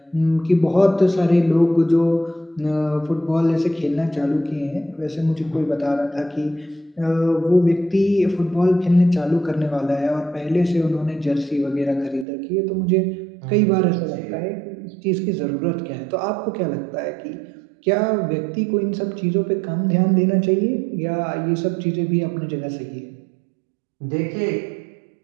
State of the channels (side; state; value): left; drops out; at 12.2 s